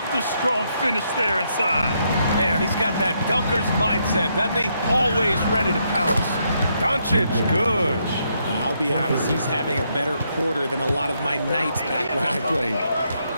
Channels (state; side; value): inverted; both; correlation -0.76